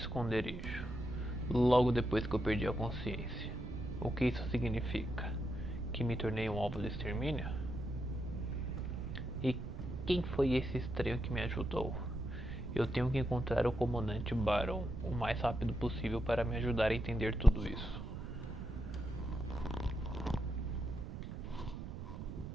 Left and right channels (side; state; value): right; noise; rumble, 7 dB below the sound